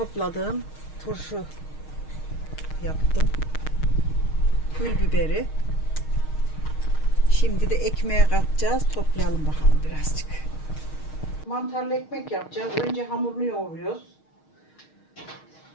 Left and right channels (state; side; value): late; right; 6.4 ms